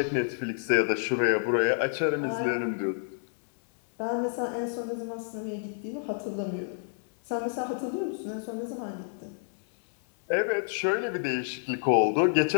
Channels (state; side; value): silent; right; 59 dB below the other